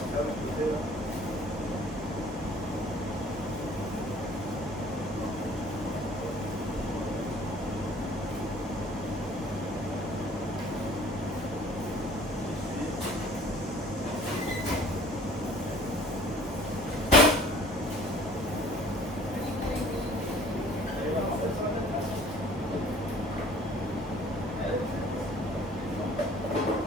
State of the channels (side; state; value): both; normal; correlation 0.51